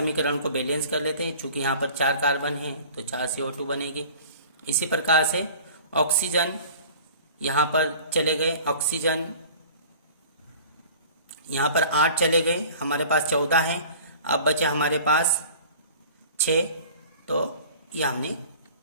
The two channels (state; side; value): inverted; both; correlation -0.45